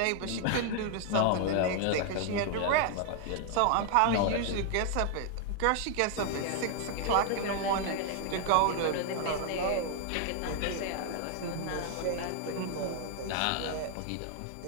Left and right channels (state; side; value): different; both; correlation 0.00